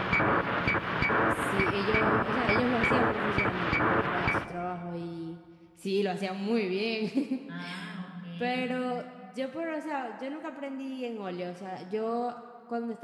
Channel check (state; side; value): identical; both; correlation 1.00